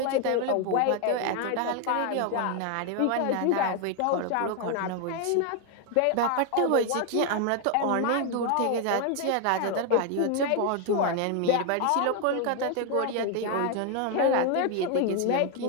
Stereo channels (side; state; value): both; different; correlation 0.01